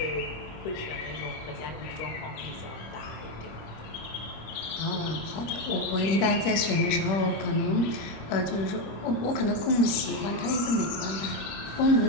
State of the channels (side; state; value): right; late; 26 ms